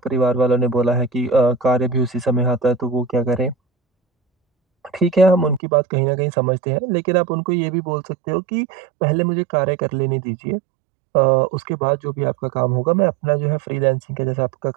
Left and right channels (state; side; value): drops out; left; at 5.6 s